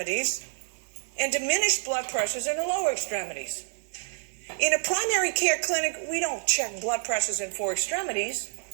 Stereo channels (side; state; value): left; silent; digital silence